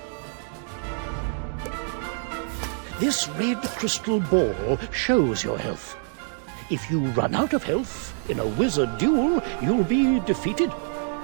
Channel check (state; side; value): silent; left; digital silence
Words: This red crystal ball shows your health. If you run out of health in a wizard duel, you'll be defeated.